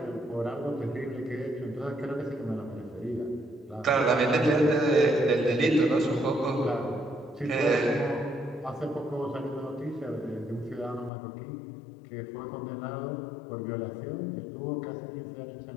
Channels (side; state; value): right; drops out; at 11.1 s